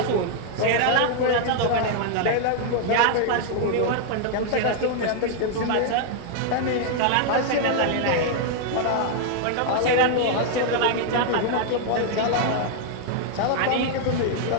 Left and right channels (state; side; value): different; both; correlation 0.00